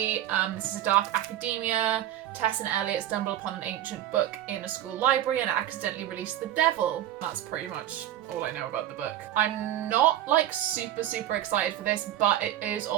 this is a dark academia. Tess and Elliot stumble upon an ancient book in a school library and accidentally release the devil. That's pretty much all I know about the book. I'm not like super excited for this, but it is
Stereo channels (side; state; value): left; quieter; 12.4 dB